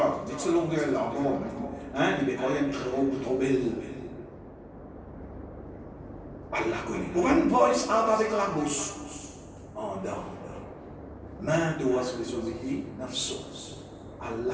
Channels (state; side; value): identical; both; correlation 1.00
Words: dites ce longueur là encore. Hein, il est quand même trop belle. Allah connaît. Pour une voice out avec la bouche. En dedans. Main doit se résoudre nafsos.